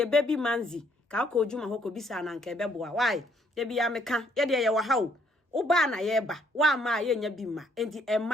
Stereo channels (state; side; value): normal; both; correlation 0.67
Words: baby manzi ka ko Juma hoko bisa na nka ebeboa why de bia meka ye de ye wa hawo uba na ye ba wa ma ye nya bi ma enti